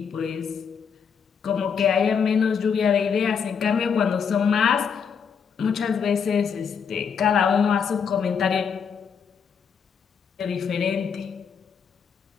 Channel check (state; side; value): quieter; right; 6.7 dB